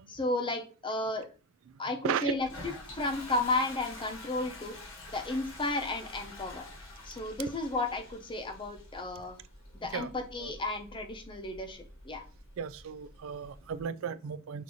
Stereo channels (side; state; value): both; normal; correlation 0.11